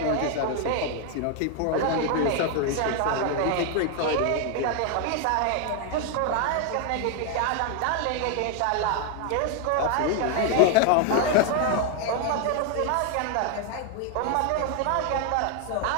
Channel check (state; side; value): different; both; correlation 0.01